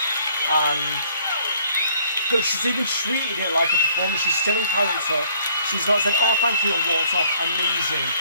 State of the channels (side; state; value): both; inverted; correlation -0.60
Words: And look, she's even treated it like a performance. She's still in character. She's not said, oh, thank you, and walked off. Amazing.